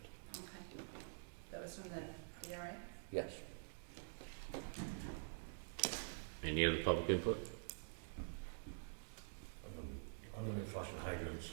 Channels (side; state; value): left; silent; digital silence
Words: Okay. That was from the DRA? Yes. Any other public input? I'm gonna be flushing hydrants